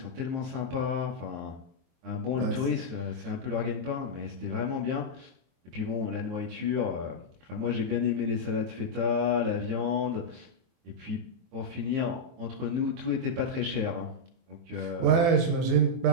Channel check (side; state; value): left; late; 24 ms